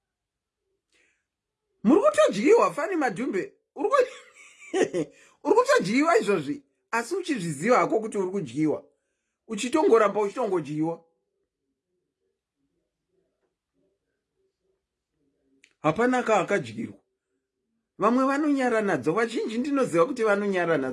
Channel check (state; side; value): identical; both; correlation 1.00